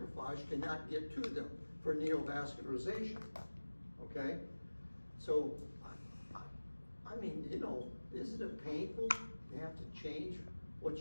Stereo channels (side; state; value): both; inverted; correlation -1.00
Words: cannot get to them for neovascularization, okay? So, I mean, you know, isn't it painful to have to change what